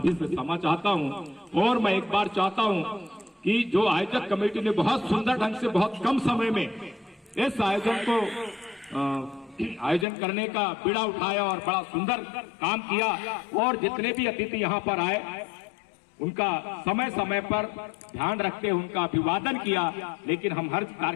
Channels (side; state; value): right; drops out; at 10.1 s